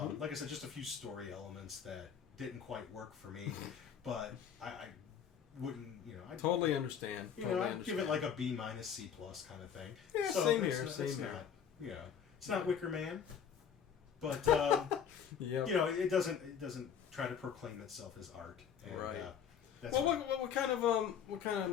I said, just a few story elements that didn't quite work for me, but I wouldn't, I totally understand. I'd give it like a B- C+ kind of thing. Yeah, so same here. Same here. It's not Wicker Man, but it doesn't try to proclaim itself as art. And, right. That's well, what kind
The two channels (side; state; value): right; quieter; 7.9 dB